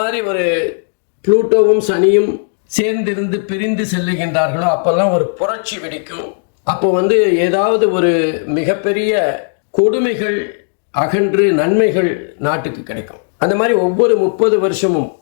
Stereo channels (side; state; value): right; silent; digital silence